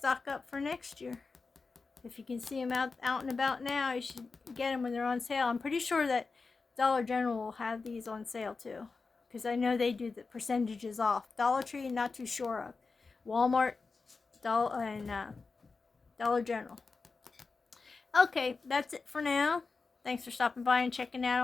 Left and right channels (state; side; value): quieter; right; 4.3 dB